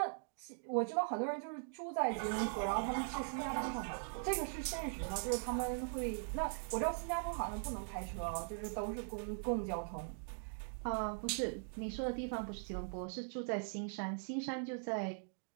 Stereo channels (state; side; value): silent; left; digital silence